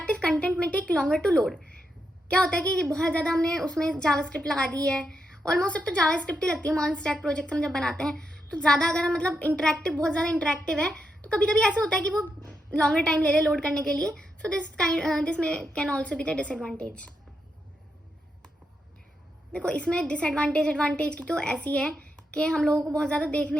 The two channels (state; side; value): normal; both; correlation 0.84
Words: कंटेंट में टेक लॉन्गर टू लोड. क्या होता है कि बहुत ज़्यादा हमने उसमें जावास्क्रिप्ट लगा दी है, ऑलमोस्ट अब तो जावास्क्रिप्ट ही लगती है. मॉन स्टैक प्रोजेक्ट हम जब बनाते हैं तो ज़्यादा अगर हम मतलब इंटरेक्टिव, बहुत ज़्यादा इंटरेक्टिव है तो कभी कभी ऐसा होता है कि वो लॉन्गर टाइम ले लोड करने के लिए. सो दिस में can also be the disadvantage. देखो इसमें डिसएडवांटेज एडवांटेज की तो ऐसी है कि हम लोगों को बहुत ज़्यादा